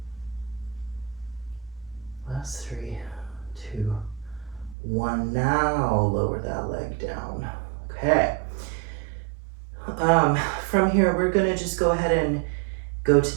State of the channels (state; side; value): drops out; left; at 4.8 s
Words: Last 3, 2, 1. Now lower that leg down. Okay. From here, we're gonna just go ahead and go to